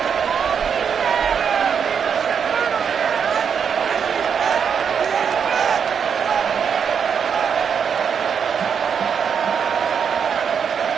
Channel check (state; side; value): quieter; left; 7.0 dB